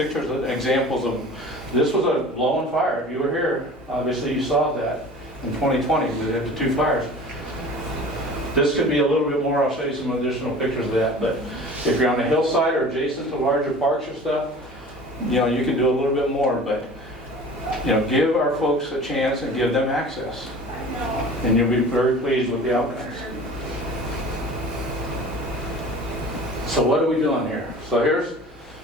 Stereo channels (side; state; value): both; normal; correlation 0.42